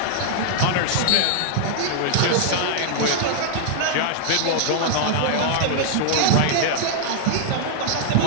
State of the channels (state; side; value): different; both; correlation -0.01